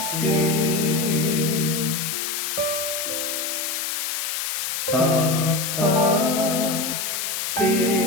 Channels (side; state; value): left; noise; hiss, 2 dB below the sound